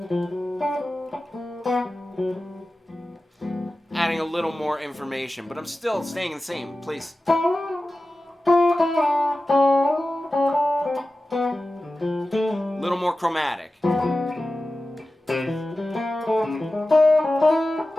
Adding a little more information, but I'm still staying in the same place. A little more chromatic.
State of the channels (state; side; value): normal; both; correlation 0.95